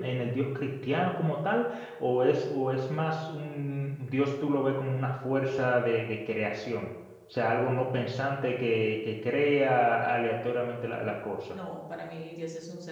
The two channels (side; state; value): both; identical; correlation 1.00